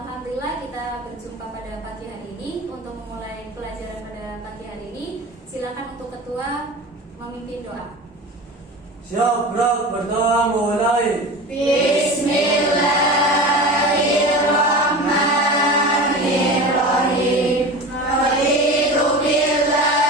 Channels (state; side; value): normal; both; correlation 0.32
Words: kita berjumpa pada pagi hari ini. Untuk memulai pelajaran pada pagi hari ini, silakan untuk ketua memimpin doa. Siap, gerak, berdoa, mulai. Bismillahirrahmanirrahim. Raditu